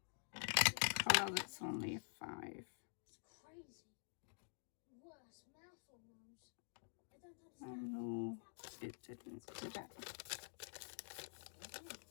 colour that's only a 5. It's crazy. Worse, mouthful nose. I don't Oh understand. no, it didn't do that.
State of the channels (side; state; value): right; silent; digital silence